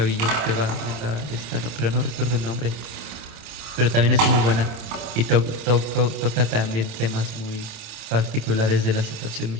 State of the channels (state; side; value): late; left; 27 ms